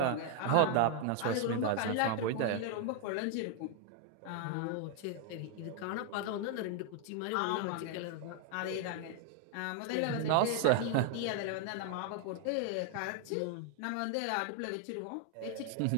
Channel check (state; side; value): different; both; correlation 0.00